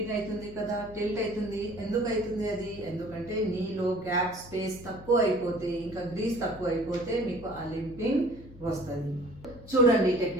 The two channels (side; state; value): left; noise; hum, 17 dB below the sound